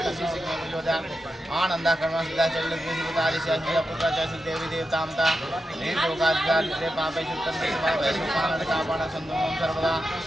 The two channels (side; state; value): both; normal; correlation 0.89